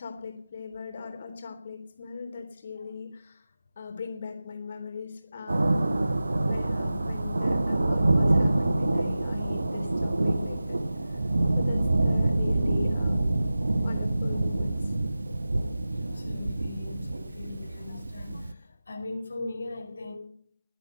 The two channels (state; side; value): inverted; both; correlation -0.95